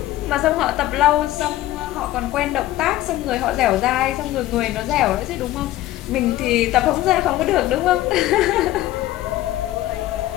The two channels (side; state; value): right; quieter; 15.3 dB